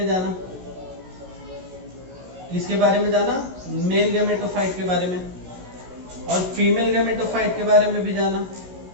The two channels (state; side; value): late; left; 16 ms